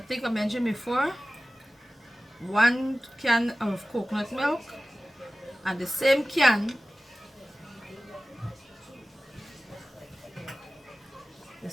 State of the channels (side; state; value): both; normal; correlation 0.96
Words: I mentioned before, 1 can of coconut milk, and the same can,